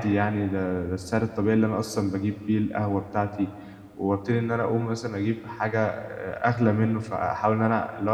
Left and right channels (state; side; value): identical; both; correlation 1.00